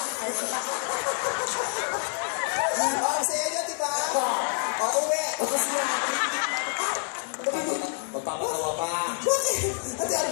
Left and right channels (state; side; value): silent; right; 55 dB below the other